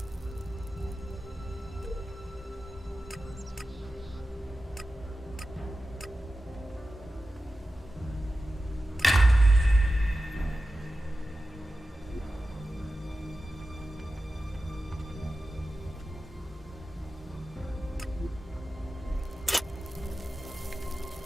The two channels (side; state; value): both; normal; correlation 0.94